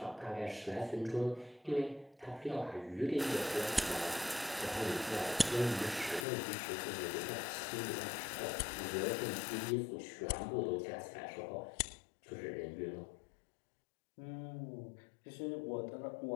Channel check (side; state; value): right; drops out; at 6.2 s